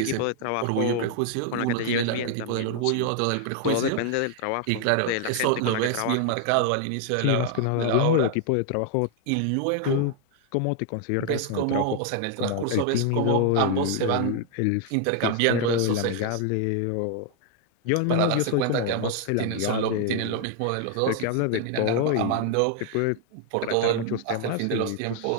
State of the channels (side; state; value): both; different; correlation 0.00